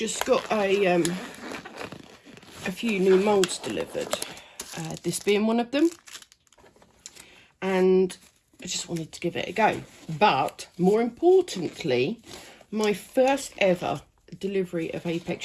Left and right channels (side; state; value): both; identical; correlation 1.00